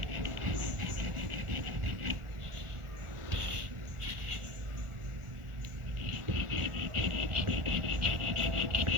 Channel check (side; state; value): left; late; 1.4 ms